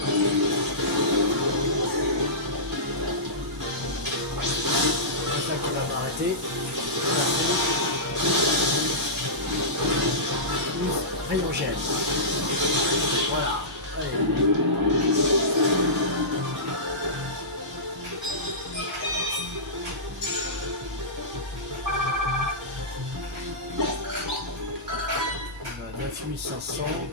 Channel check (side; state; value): both; normal; correlation -0.18